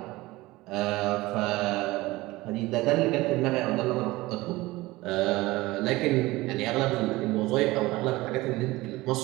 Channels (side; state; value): left; quieter; 19.7 dB